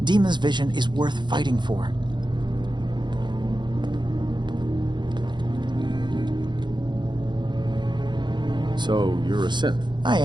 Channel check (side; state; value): left; late; 0.22 ms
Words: Dima's vision is worth fighting for. So, you're a synth? I